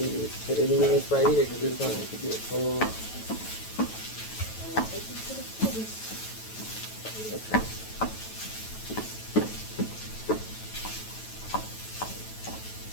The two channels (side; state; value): right; late; 9.2 ms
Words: put it in this right here because it's going to get full. Okay.